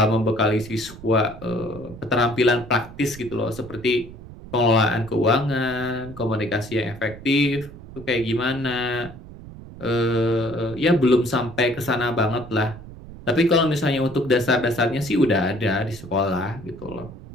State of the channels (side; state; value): right; noise; rumble, 16 dB below the sound